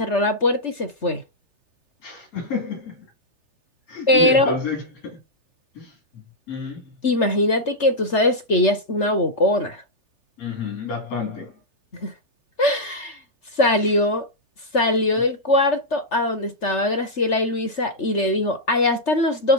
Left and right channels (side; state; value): right; late; 3.3 ms